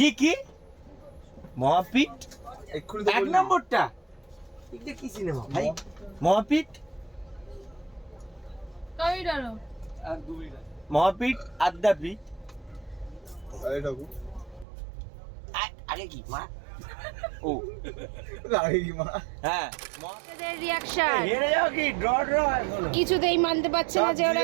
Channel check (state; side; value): drops out; left; at 14.7 s